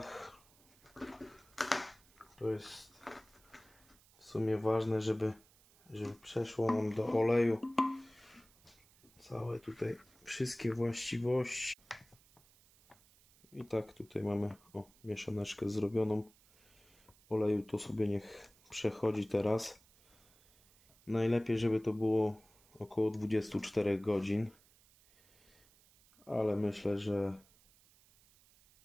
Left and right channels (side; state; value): right; noise; hiss, 28 dB below the sound